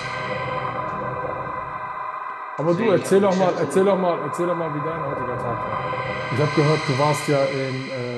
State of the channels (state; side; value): identical; both; correlation 1.00